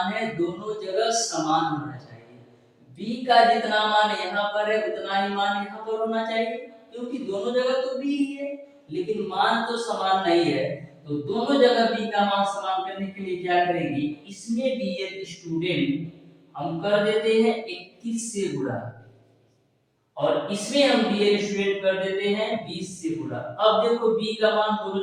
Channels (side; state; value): both; identical; correlation 1.00